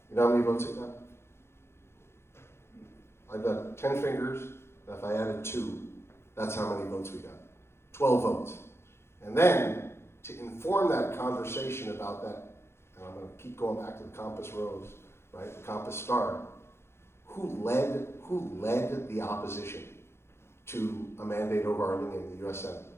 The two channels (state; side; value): late; right; 0.12 ms